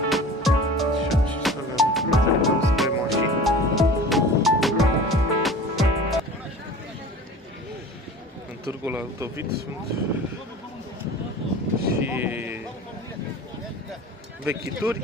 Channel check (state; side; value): normal; both; correlation 0.39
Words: În târgul Altovit sunt și